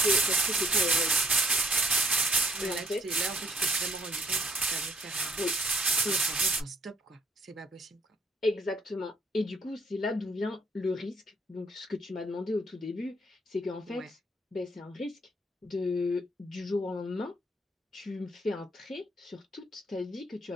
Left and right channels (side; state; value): both; normal; correlation 0.64